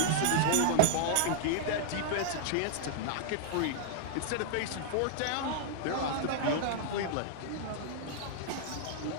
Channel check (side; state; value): both; different; correlation -0.01